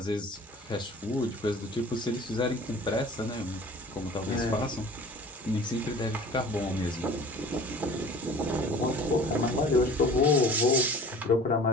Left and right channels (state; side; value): normal; both; correlation 0.45